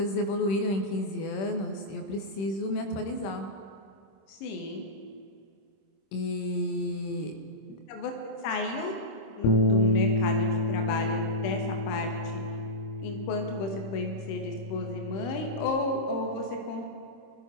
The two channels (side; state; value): right; late; 26 ms